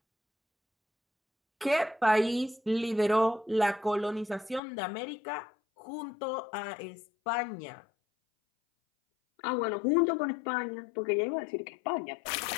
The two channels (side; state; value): right; drops out; at 4.6 s